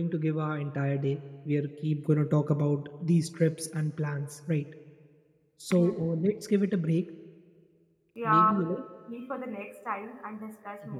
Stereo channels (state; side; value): identical; both; correlation 1.00